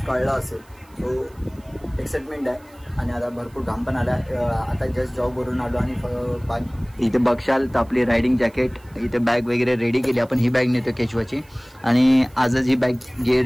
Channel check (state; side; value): noise; right; hiss, 30 dB below the sound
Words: कळलं असेल. सो एक्साइटमेंट आहे. आणि आता भरपूर घाम पण आला. आता जस्ट जॉबवरून आलो आणि इथे बघशाल तर आपली रायडिंग जॅकेट, इथे बॅग वगैरे रेडी केली. आपण ही बॅग नेतो केशवाची, आणि आजच ही बॅग